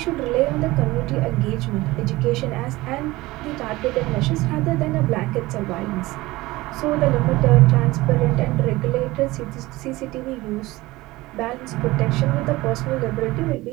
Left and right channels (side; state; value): left; quieter; 19.7 dB